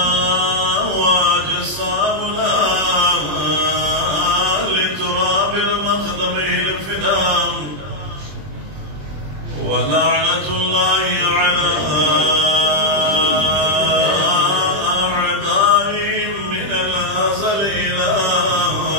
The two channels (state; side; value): late; left; 20 ms